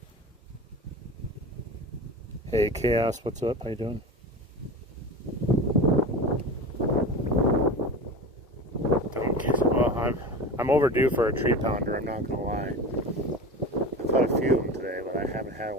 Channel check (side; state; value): both; normal; correlation 0.30